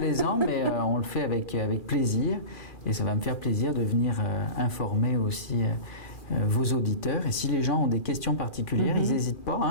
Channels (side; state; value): right; late; 2.4 ms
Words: mais on le fait avec plaisir. Et ça va me faire plaisir de venir informer aussi vos auditeurs. Et si les gens ont des questions particulières, ils n'hésitent